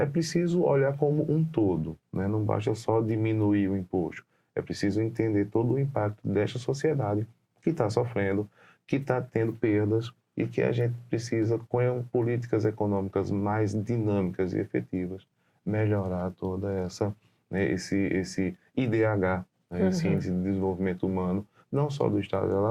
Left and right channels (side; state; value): both; identical; correlation 1.00